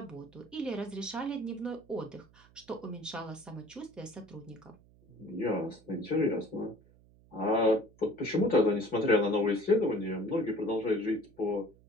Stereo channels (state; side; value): noise; right; hum, 27 dB below the sound